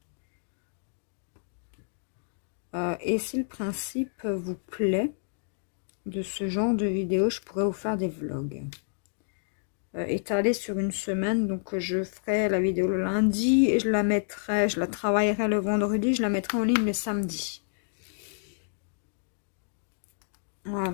Et si le principe vous plaît de ce genre de vidéo, je pourrais vous faire des vlogs. Étalés sur une semaine, donc je ferai la vidéo le lundi et je la travaillerai le vendredi, je la mettrai en ligne le samedi.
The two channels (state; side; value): silent; right; digital silence